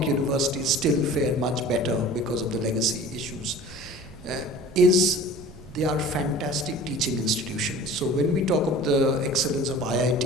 universities still fare much better because of the legacy issues, is they are fantastic teaching institutions. So when we talk of the excellence of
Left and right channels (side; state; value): right; noise; rumble, 18 dB below the sound